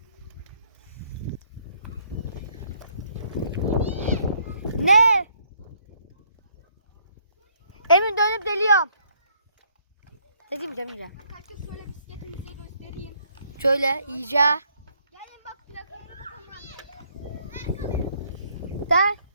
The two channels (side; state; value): both; inverted; correlation -0.68